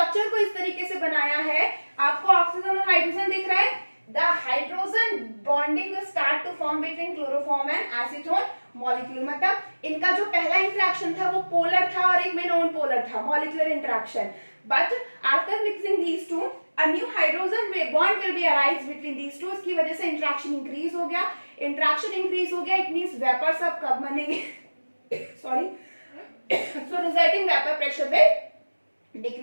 को इस तरीके से बनाया है, आपको ऑक्सीजन और हाइड्रोजन दिख रहा है, the hydrogen bonding will start to form between chloroform and acetone molecule, मतलब इनका जो पहला इंटरेक्शन था वो पोलर था और एक में नॉन पोलर था, molecular interaction, but after mixing these two a new hydrogen bond will be arise between these two, इसकी वजह से इंटरेक्शन इंक्रीज हो गया, इट मींस वेपर्स अब कब बनेंगे sorry so resulting vapor pressure will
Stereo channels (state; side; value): inverted; both; correlation -1.00